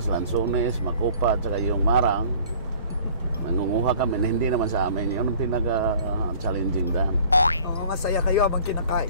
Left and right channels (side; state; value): both; inverted; correlation -0.51